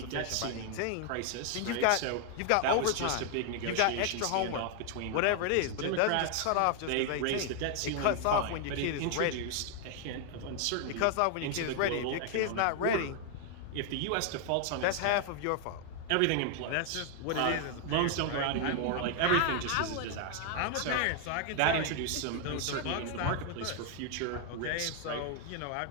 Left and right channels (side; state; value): both; different; correlation 0.00